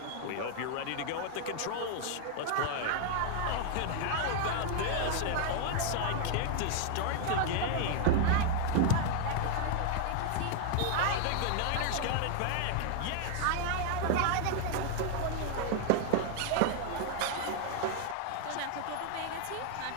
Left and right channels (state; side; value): different; both; correlation 0.00